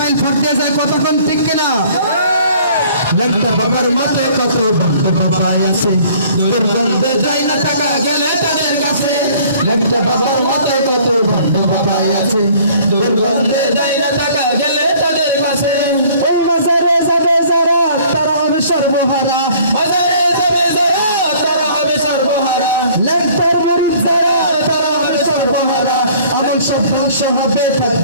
ফট দিয়ে যায়, কতক্ষণ ঠিক কিনা? ল্যাংটা বাবার মতো কত ভণ্ড বাবা আছে, দুর্গন্ধে যায় না থাকা গেলে তাদের কাছে। ল্যাংটা বাবার মতো কত ভণ্ড বাবা আছে, দুর্গন্ধে যায় না থাকা গেলে তাদের কাছে। ওই বাজারে যাবে যারা তারা হবে সর্বহারা, বাজারে যাবে যারা তারা হবে সর্বহারা। ল্যাংটার মরিদ যারা তারা হবে সর্বহারা, আমল সব ধ্বংস হবে,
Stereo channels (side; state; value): both; inverted; correlation -0.54